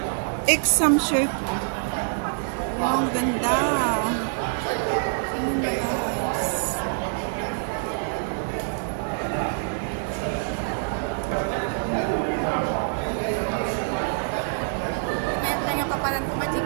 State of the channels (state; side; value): silent; left; digital silence